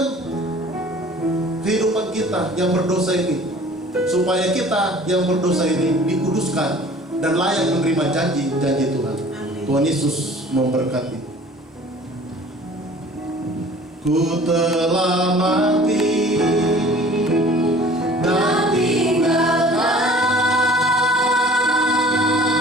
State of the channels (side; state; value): both; normal; correlation 0.48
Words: kehidupan kita yang berdosa ini, supaya kita yang berdosa ini dikuduskan dan layak menerima janji-janji Tuhan. Tuhan Yesus memberkati. Ku telah mati dan tinggalkan